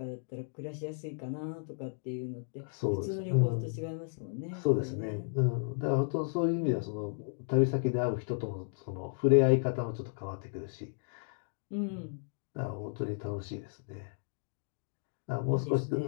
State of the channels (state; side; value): silent; right; digital silence